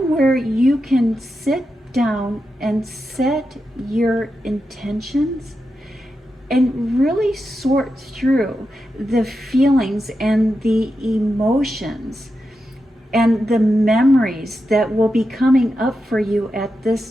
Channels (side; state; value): both; normal; correlation 0.88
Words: where you can sit down and set your intentions and really sort through the feelings and the emotions and the memories that will be coming up for you at